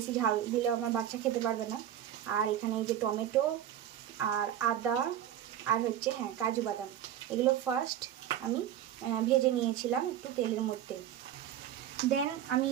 ঝাল দিলে আমার বাচ্চা খেতে পারবে না। আর এখানে এই যে টমেটো আর আদা আর হচ্ছে কাজু বাদাম, এগুলো ফার্স্ট আমি ভেজে নিয়েছিলাম একটু তেলের মধ্যে। দেন আমি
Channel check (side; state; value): left; quieter; 10.9 dB